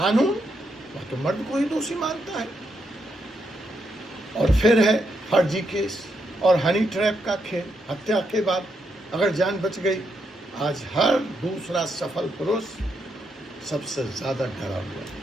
वह तो मर्द को ही दोषी मानता है। और फिर है फर्जी केस और हनी ट्रैप का खेल। हत्या के बाद अगर जान बच गई, आज हर दूसरा सफल पुरुष सबसे ज्यादा डरा हुआ है।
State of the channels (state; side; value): normal; both; correlation 0.80